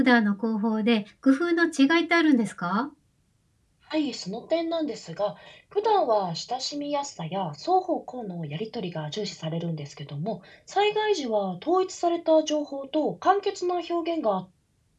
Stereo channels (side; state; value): both; identical; correlation 1.00